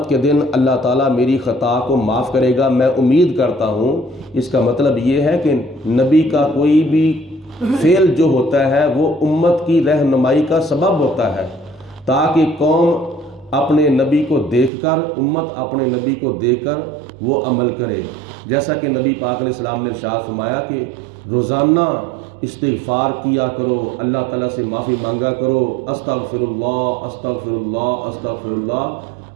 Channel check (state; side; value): drops out; left; at 14.7 s